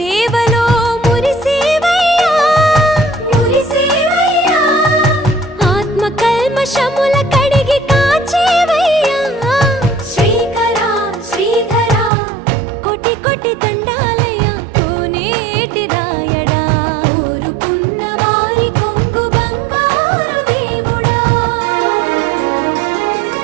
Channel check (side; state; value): left; drops out; at 12.1 s